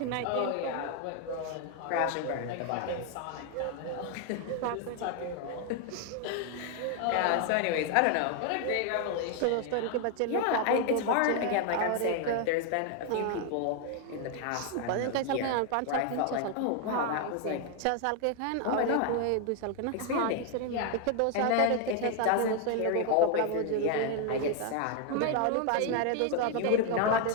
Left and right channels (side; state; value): both; different; correlation 0.01